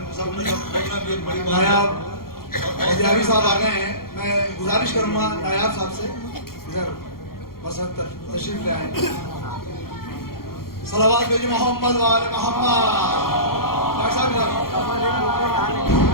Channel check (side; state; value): right; late; 0.93 ms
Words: सब ने बैठना भी एक बड़ी बात है। नायाब साहब आ गए हैं, मैं गुजारिश करूंगा नायाब साहब से इधर बस तशरीफ ले आए। सलावत भेजिए मोहम्मद वाले मोहम्मद।